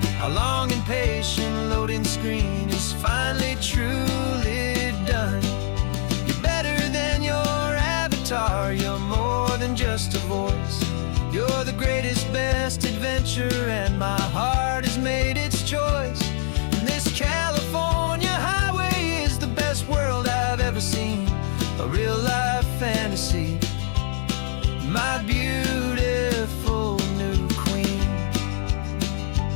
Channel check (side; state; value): right; silent; digital silence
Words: Our long and patient loading screen is finally truly done. You're better than your avatar, you're more than just a voice. You're the greatest, best adventure, and my heart has made its choice. And this California highway is the best world I've ever seen, a real-life fantasy, my beautiful new queen.